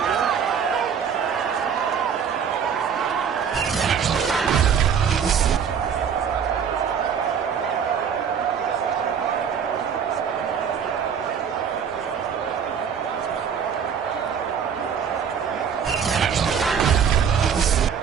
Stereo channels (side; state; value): left; quieter; 7.3 dB